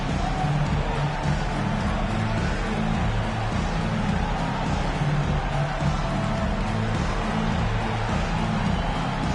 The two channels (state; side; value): identical; both; correlation 1.00